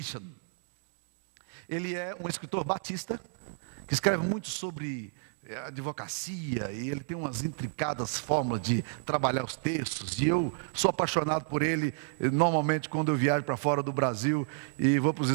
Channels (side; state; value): left; silent; digital silence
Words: Ele é um escritor batista, que escreve muito sobre advocacia, e ele tem umas intricadas fórmulas de trabalhar os textos, e eu sou apaixonado por ele. Normalmente quando eu viajo para fora do Brasil e vou para os